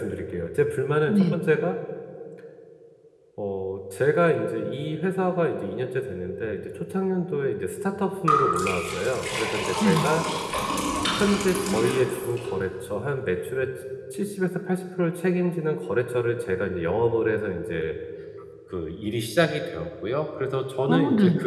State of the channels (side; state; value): both; identical; correlation 1.00